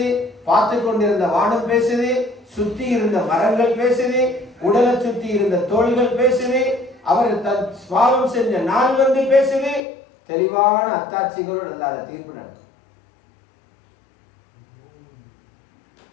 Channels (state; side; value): drops out; right; at 9.8 s